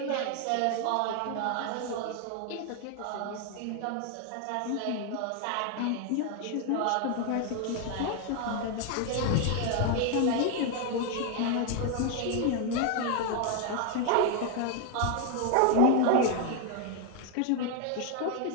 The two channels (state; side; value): different; both; correlation 0.01